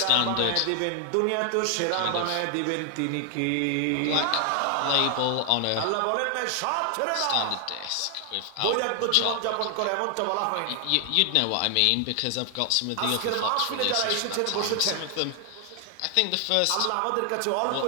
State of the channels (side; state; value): both; different; correlation 0.00